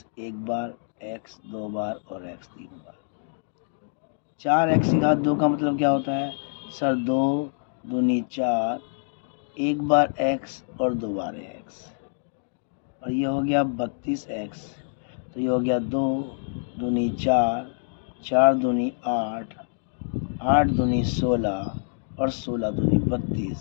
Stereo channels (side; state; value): right; silent; digital silence